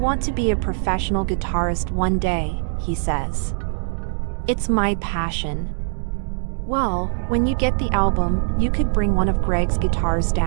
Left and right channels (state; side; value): silent; left; digital silence